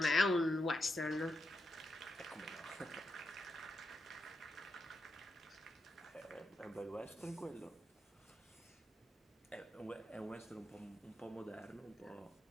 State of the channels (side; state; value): both; normal; correlation 0.85